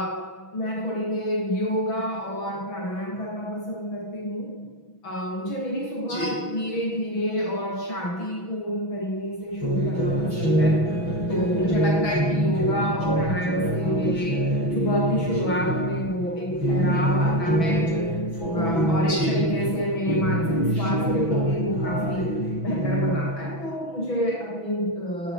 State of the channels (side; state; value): right; late; 6.1 ms